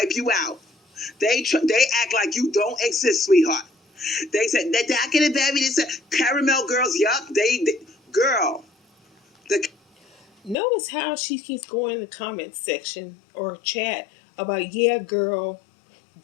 you out. They act like you don't exist, sweetheart. They said that I can have baby. They said caramel girls. Yup, they girl. The Notice how she keeps going in the comment section or chat about, yeah, girl,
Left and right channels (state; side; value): drops out; right; at 10.6 s